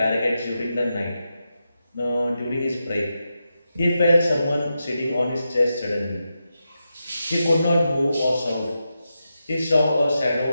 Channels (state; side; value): inverted; both; correlation -0.88